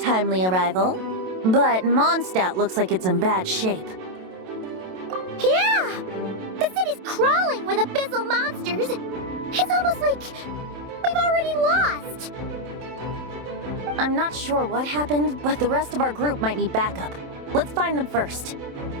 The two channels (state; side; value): late; left; 27 ms